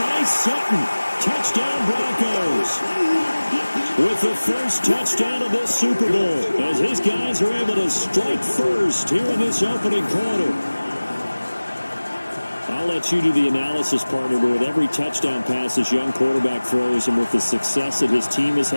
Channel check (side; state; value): both; inverted; correlation -1.00